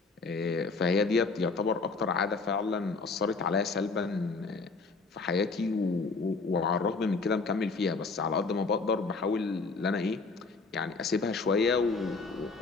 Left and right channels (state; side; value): quieter; right; 4.2 dB